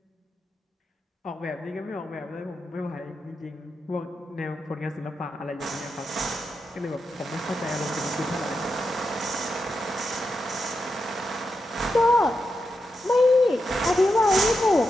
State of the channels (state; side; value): normal; both; correlation 0.87